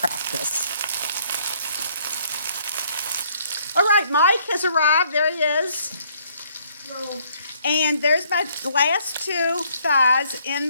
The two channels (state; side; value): inverted; both; correlation -0.65